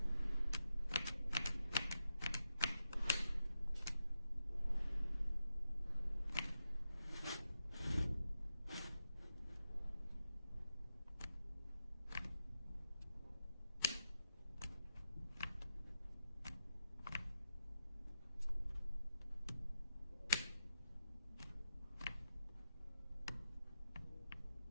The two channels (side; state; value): both; inverted; correlation -0.87